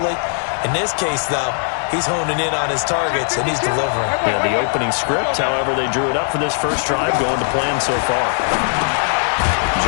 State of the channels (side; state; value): right; silent; 59 dB below the other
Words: In this case, though, he's honing in on his targets, and he's delivering. Yeah, the opening script, however, they drew it up for this first drive, going to plan so far.